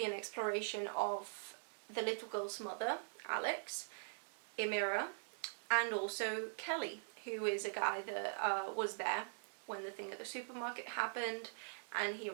an exploration of the little girl's mother, Alex, Emira, and also Kelly, who is a guy that was there when the thing at the supermarket happened, and he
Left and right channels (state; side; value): silent; left; digital silence